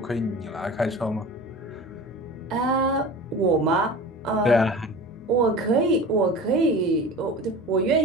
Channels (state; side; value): normal; both; correlation 0.35